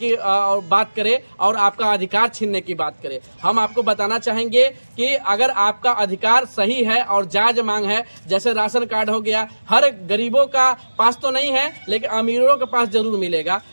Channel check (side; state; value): both; inverted; correlation -1.00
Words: बात करे और आपका अधिकार छीनने की बात करे। हम आपको बताना चाहेंगे कि अगर आपका अधिकार सही है और जायज मांग है, जैसे राशन कार्ड हो गया, हर गरीबों का पास तो नहीं है लेकिन अमीरों के पास जरूर मिलेगा।